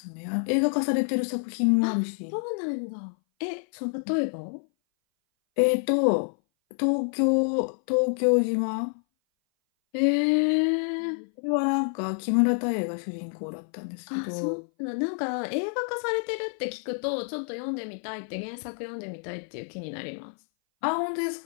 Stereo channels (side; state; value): right; silent; 58 dB below the other